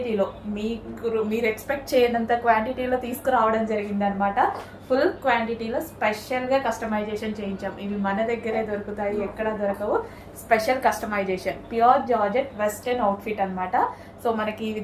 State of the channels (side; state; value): both; identical; correlation 1.00